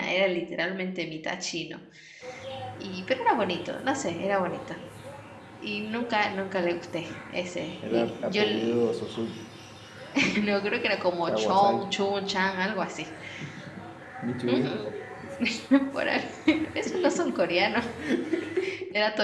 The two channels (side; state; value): both; identical; correlation 1.00